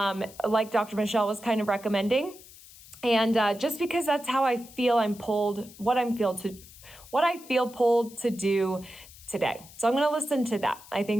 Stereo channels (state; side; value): noise; left; hiss, 20 dB below the sound